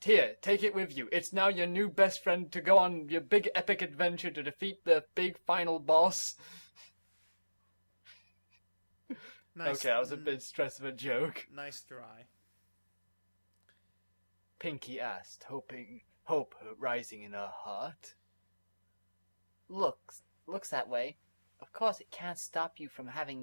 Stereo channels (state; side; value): inverted; both; correlation -1.00